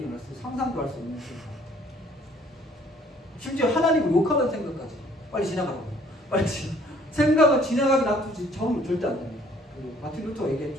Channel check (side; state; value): both; normal; correlation 0.59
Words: 상상도 할 수 없는 생각. 심지어 하나님을 욕하는 생각까지. 빨리 지나가라고. 생각을 지나가게 놔두지 저는 절대 안 됩니다. 마틴 루터가